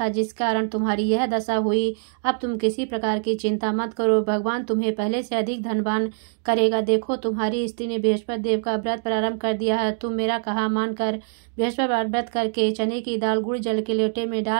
जिस कारण तुम्हारी यह दशा हुई। अब तुम किसी प्रकार की चिंता मत करो, भगवान तुम्हें पहले से अधिक धनवान करेगा। देखो, तुम्हारी स्त्री ने बृहस्पति देव का व्रत प्रारंभ कर दिया है। तुम मेरा कहा मानकर बृहस्पतिवार व्रत करके चने की दाल गुड़ जल के लोटे में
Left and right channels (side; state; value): left; silent; digital silence